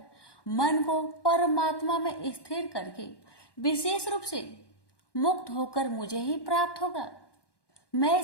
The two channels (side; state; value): right; late; 1.1 ms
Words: मन को परमात्मा में स्थिर करके विशेष रूप से मुक्त होकर मुझे ही प्राप्त होगा। मैं